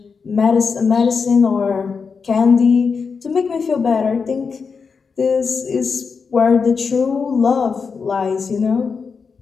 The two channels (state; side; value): quieter; right; 5.4 dB